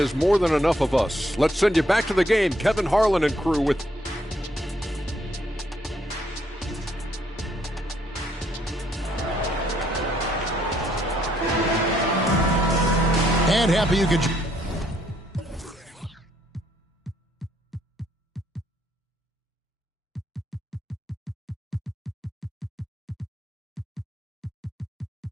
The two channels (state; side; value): normal; both; correlation 0.71